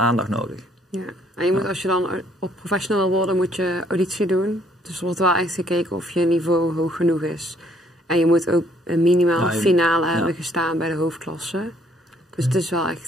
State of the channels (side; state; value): both; normal; correlation 0.65